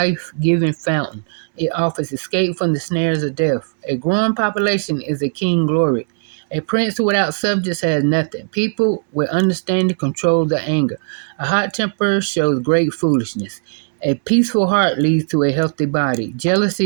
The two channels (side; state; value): left; silent; 67 dB below the other